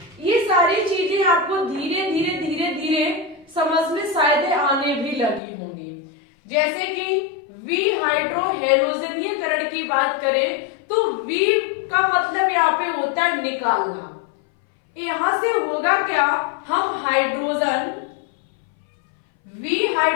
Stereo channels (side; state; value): right; drops out; at 5.4 s